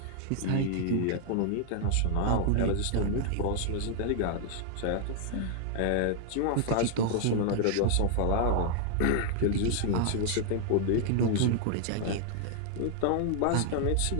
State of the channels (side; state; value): both; different; correlation 0.00